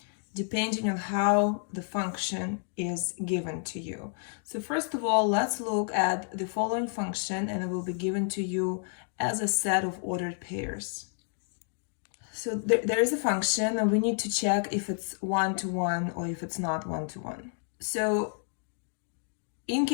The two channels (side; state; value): right; silent; 58 dB below the other